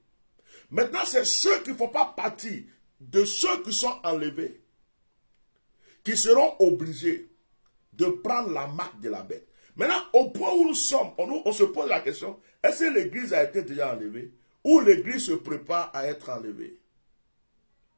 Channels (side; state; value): both; inverted; correlation -1.00